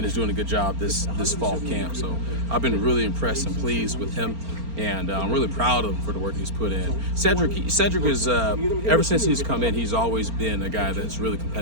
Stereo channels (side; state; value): left; late; 4.4 ms